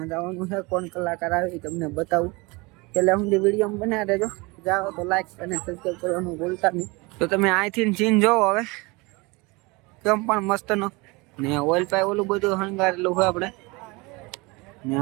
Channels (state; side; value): quieter; left; 25.5 dB